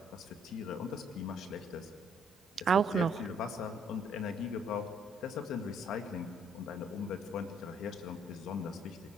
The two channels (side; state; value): both; normal; correlation 0.65